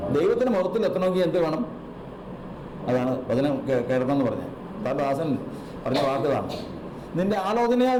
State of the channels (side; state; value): both; identical; correlation 1.00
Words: ദൈവത്തിൻ്റെ മഹത്വത്തിൽ എത്തണമെങ്കിൽ എന്ത് വേണം? അതാണ് വചനം കേൾക്കണമെന്ന് പറഞ്ഞത്. ദാസൻ പറഞ്ഞ വാക്കുകളാണ്. നിന്റെ ആലോചനയാൽ